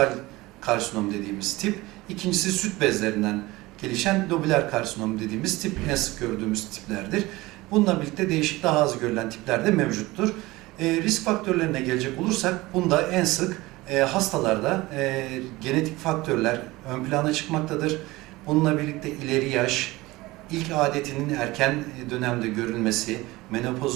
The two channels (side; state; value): left; quieter; 20.1 dB